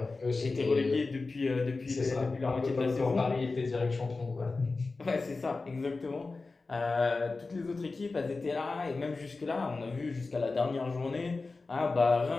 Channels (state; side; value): quieter; right; 3.8 dB